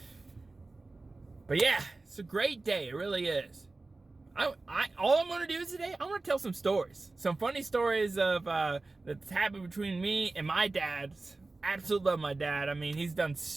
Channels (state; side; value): quieter; left; 3.4 dB